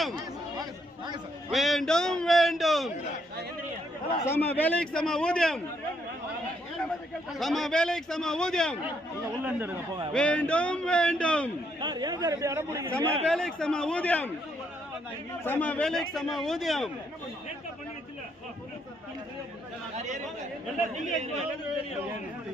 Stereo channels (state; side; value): normal; both; correlation 0.73